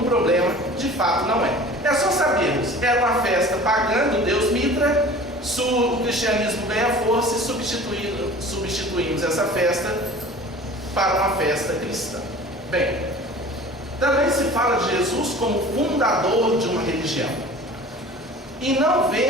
problema, de fato não é. É só sabermos, era uma festa pagã do deus Mitra, o cristianismo ganha força e substituímos essa festa para uma festa cristã. Bem, também se fala de Jesus como fundador de uma religião. E não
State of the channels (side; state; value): both; normal; correlation 0.42